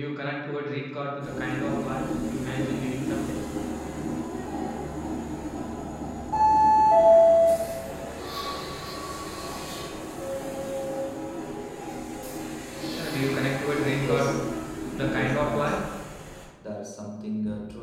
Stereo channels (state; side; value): identical; both; correlation 1.00